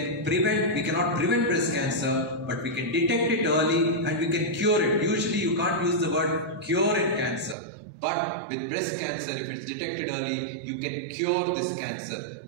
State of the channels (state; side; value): drops out; left; at 7.6 s